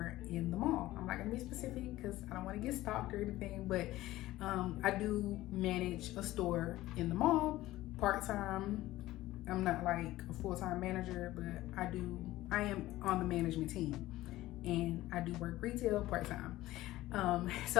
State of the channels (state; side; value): quieter; right; 16.5 dB